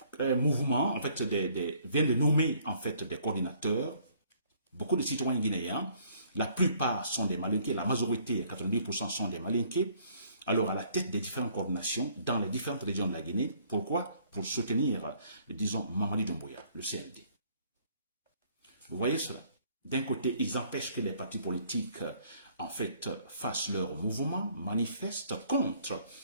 un mouvement, en fait, vient de nommer, en fait, des coordinateurs. Beaucoup de citoyens guinéens, la plupart sont des Malinqués, la majorité, 90% sont des Malinqués. Alors, à la tête des différentes coordinations dans les différentes régions de la Guinée. Pourquoi? Pour soutenir, disons, Mamadi Doumbouya, le CND. Vous voyez cela? D'un côté, ils empêchent que les partis politiques, en fait, fassent leur mouvement, manifestent contre,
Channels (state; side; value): inverted; both; correlation -0.61